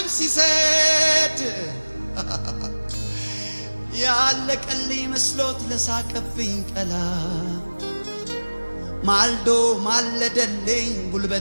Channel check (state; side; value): inverted; both; correlation -1.00